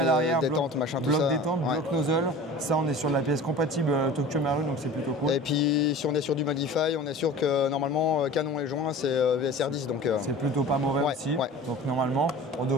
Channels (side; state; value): both; normal; correlation 0.39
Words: machin, tout ça. Bloc détente, bloc nozzle. Ça, on est sur la pièce compatible Tokyo Marui, donc c'est plutôt cool. Et puis, si on est sur du Modify, on est sûr que normalement, canon et joint, c'est VSR10. Donc c'est plutôt pas mauvais aussi. Ouais. Donc normalement, on